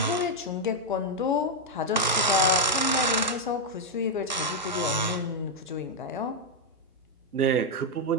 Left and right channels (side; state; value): both; normal; correlation 0.00